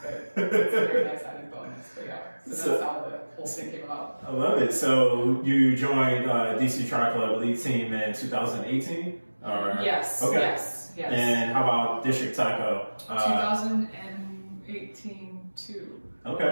but it's a very nice added bonus. But so that's how the whole thing came about. I love it. So you joined DC Tri Club Elite Team in 2018? Yes. Okay. Yes. And how about District Taco? 2018 too. Okay.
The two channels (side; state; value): both; inverted; correlation -1.00